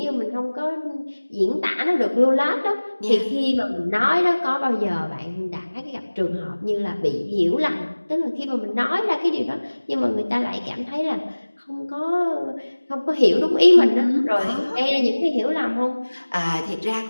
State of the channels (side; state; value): both; inverted; correlation -1.00